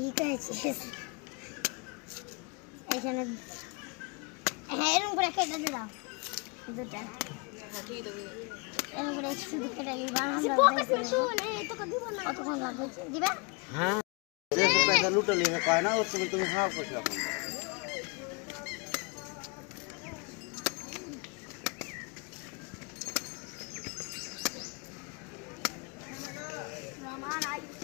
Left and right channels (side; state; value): right; quieter; 31.9 dB